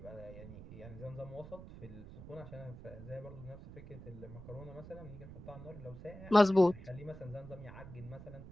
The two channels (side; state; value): right; noise; rumble, 14 dB below the sound